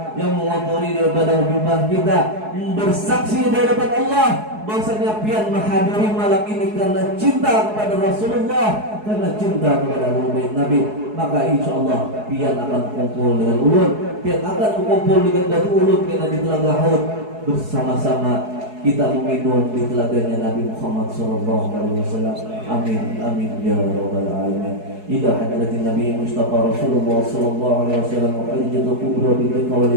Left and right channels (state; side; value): late; left; 4.7 ms